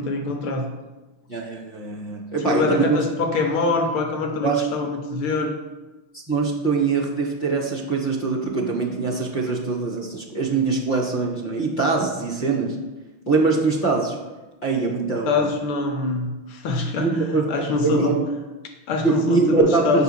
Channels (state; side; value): late; right; 5.7 ms